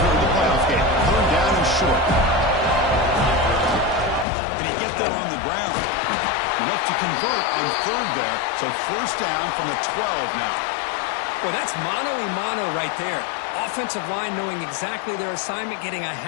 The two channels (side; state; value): right; drops out; at 4.2 s